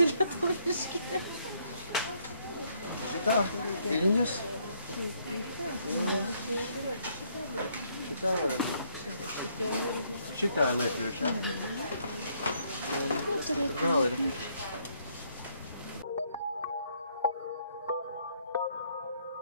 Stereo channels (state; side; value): inverted; both; correlation -0.70